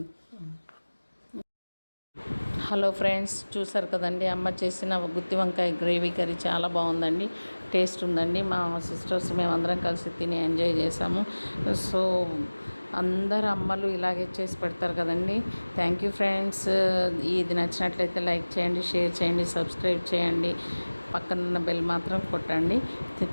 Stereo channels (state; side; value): inverted; both; correlation -1.00